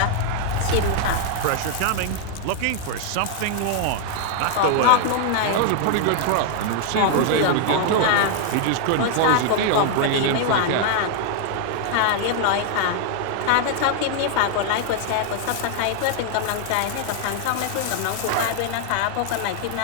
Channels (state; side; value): different; both; correlation 0.00